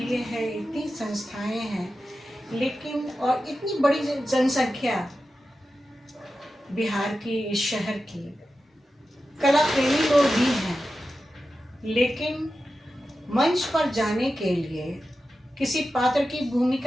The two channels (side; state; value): both; normal; correlation 0.92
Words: है, इतनी संस्थाएं हैं, लेकिन और इतनी बड़ी जनसंख्या बिहार की, इस शहर की, कला प्रेमी लोग भी हैं, लेकिन मंच पर जाने के लिए, किसी पात्र की